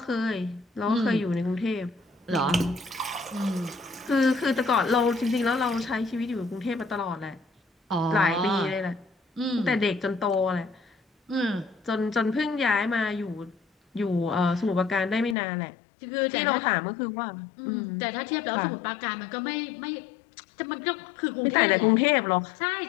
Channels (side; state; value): right; drops out; at 15.4 s